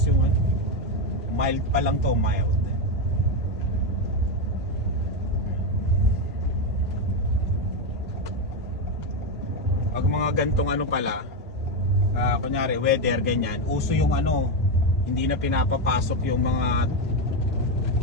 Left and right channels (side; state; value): both; normal; correlation 0.09